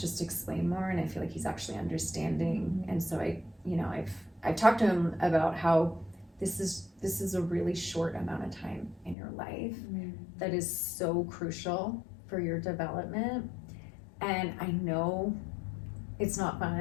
explain more and I feel like he's actually understanding. And so I've talked to him about how this is a really short amount of time in your life that is so crucial for your development. And I know it's not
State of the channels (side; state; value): right; drops out; at 9.2 s